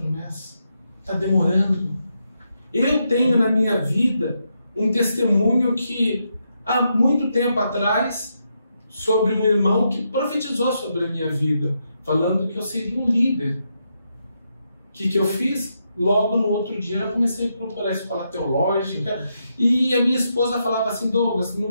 Está demorando. Eu tenho na minha vida um testemunho que há muito tempo atrás, sobre um irmão que profetizou sobre a minha vida, falando que eu seria um líder. O que eu fiz? Logo no outro dia eu comecei a procurar a escola teológica, e a minha esposa falava assim: Douglas, no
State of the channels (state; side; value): inverted; both; correlation -0.82